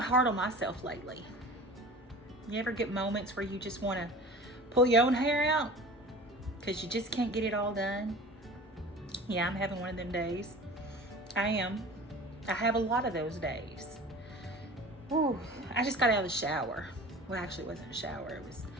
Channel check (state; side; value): normal; both; correlation 0.39